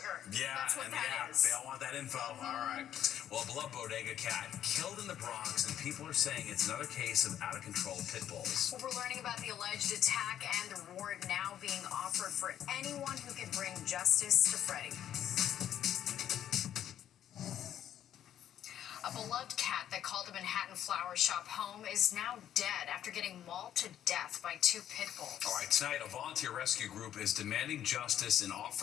Yeah, That's what and that is. they all want that info. All right. Well, a beloved bodega cat killed in the Bronx, and people are saying it's another case of out-of-control pit bulls. Well, we're learning about the alleged attack and the reward now being offered for anyone who can bring justice to Freddie. A beloved cat that called a Manhattan flower shop home is now dead after getting mauled to death by 2 pit bulls. All right, tonight, a volunteer rescue group is demanding justice and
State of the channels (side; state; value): right; quieter; 10.7 dB